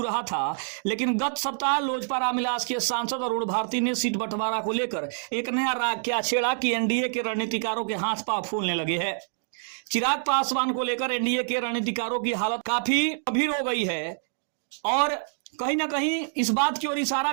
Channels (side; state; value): left; silent; digital silence